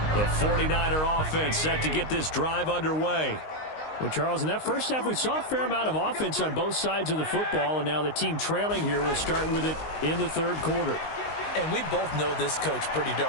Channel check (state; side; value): late; right; 19 ms